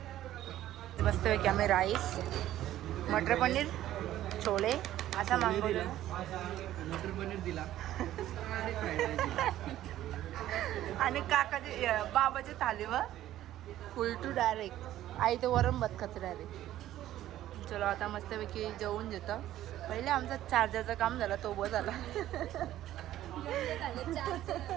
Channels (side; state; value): left; quieter; 13.3 dB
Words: मस्तपैकी आम्ही राईस, मटर पनीर, छोले असा मागवलं. मटर पनीर दिला आणि काकाची बाबाची थालीवर फुल टू डायरेक्ट. आई तर वरण भात खाते डायरेक्ट. चलो आता मस्तपैकी जेवून घेतो. पहिले आमचा चार्जरचं काम झालं, तो बस झाला.